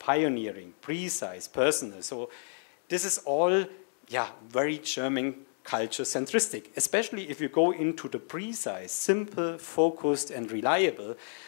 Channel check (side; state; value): right; silent; digital silence